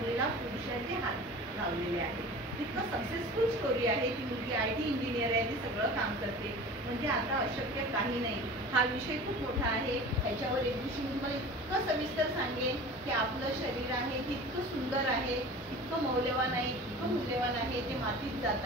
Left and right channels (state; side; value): normal; both; correlation 0.38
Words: पुरुषाचे हात लावलेले आहेत. इतकं सक्सेसफुल स्टोरी आहे. ती मुलगी IT इंजिनियर आहे, ती सगळं काम करते. म्हणजे आता अशक्य काही नाही. हा विषय खूप मोठा आहे. ह्याच्यावर एक दिवशी मी तुम्हाला इतकं सविस्तर सांगेन की आपलं शरीर आहे ते इतकं सुंदर आहे, इतकं मौल्यवान आहे, इतकं मूल्यवान आहे, ते मातीत